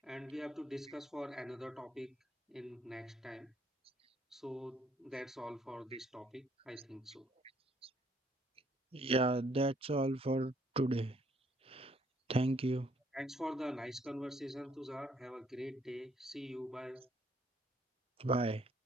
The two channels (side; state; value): both; normal; correlation 0.66